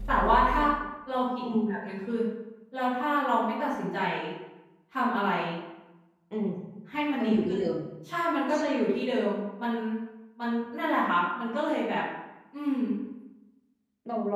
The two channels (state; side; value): identical; both; correlation 1.00